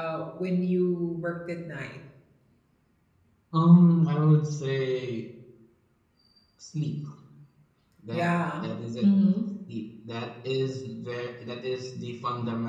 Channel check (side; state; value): both; identical; correlation 1.00